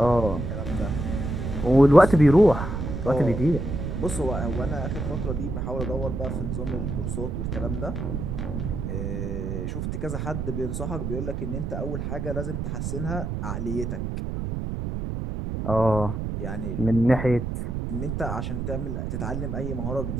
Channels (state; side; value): noise; right; rumble, 3 dB below the sound